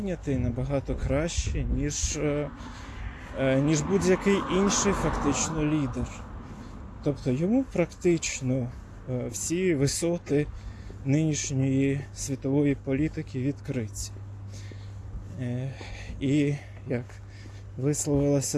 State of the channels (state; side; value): identical; both; correlation 1.00